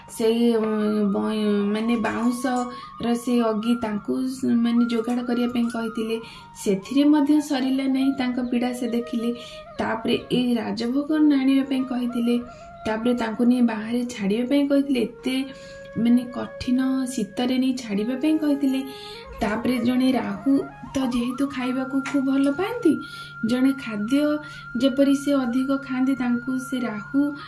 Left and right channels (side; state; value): both; identical; correlation 1.00